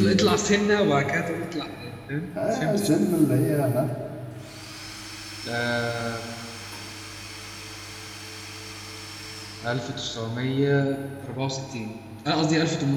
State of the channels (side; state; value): both; identical; correlation 1.00